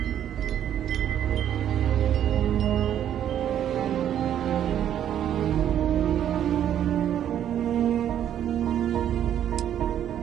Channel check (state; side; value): quieter; left; 10.3 dB